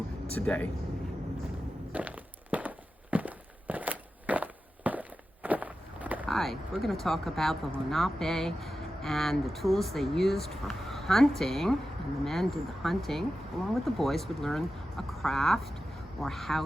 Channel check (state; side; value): normal; both; correlation 0.92